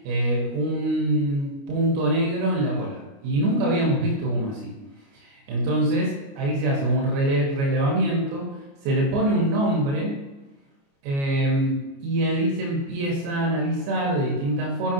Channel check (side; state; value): left; late; 29 ms